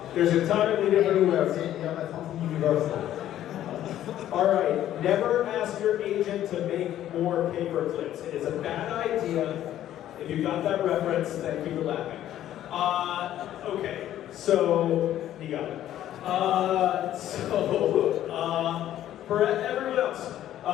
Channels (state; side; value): quieter; right; 12.2 dB